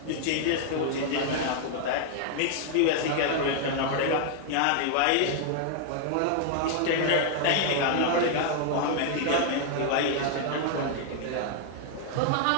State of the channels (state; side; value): different; both; correlation 0.00